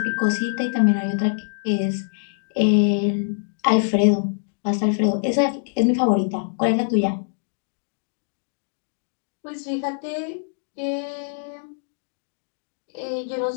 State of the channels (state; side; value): silent; right; digital silence